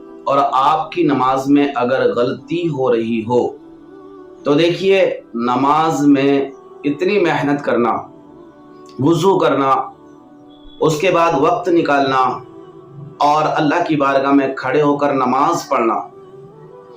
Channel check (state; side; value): identical; both; correlation 1.00